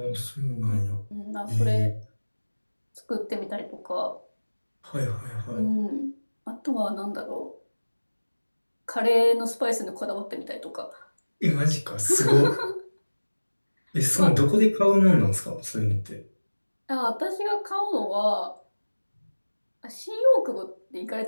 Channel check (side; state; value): both; inverted; correlation -1.00